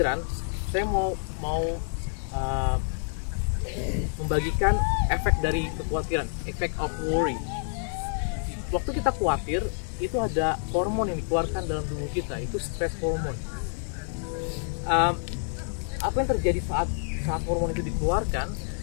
saya mau membagikan efek dari kekhawatiran, effect of worry. Waktu kita khawatir, itu ada hormon yang dikeluarkan dalam tubuh kita, itu stress hormone. Apa yang terjadi saat hormon itu dikeluarkan,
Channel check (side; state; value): right; silent; digital silence